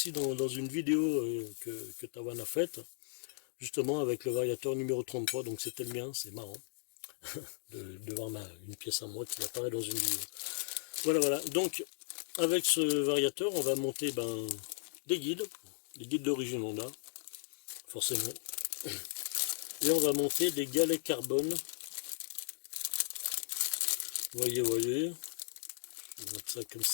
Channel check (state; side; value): silent; right; digital silence